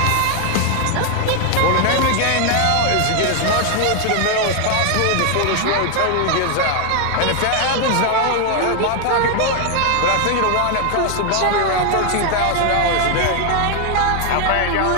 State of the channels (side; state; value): both; different; correlation 0.00